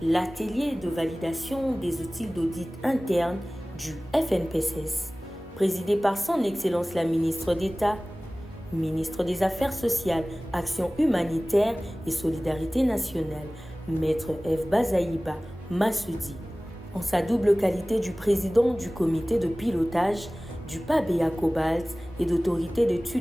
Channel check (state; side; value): normal; both; correlation 0.98